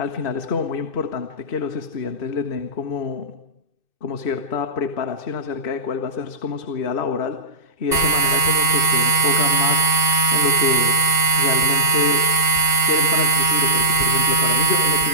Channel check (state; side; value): late; right; 2.6 ms